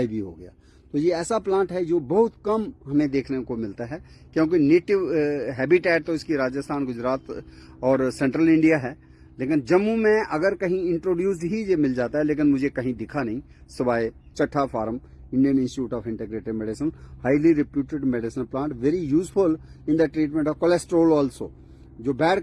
ही हो गया। तो ये ऐसा प्लांट है जो बहुत कम हमें देखने को मिलता है, क्योंकि नेटिव हैबिटेट तो इसकी राजस्थान, गुजरात और सेंट्रल इंडिया है। लेकिन जम्मू में अगर कहीं इंट्रोड्यूस्ड ही ये मिल जाता है, लेकिन मुझे कहीं दिखा नहीं, सिवाय Chatha farm, Indian Institute of Integrative Medicine, highly reputed medicinal plant, very useful in the treatment of cholesterol also. जो बैड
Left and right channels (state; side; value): identical; both; correlation 1.00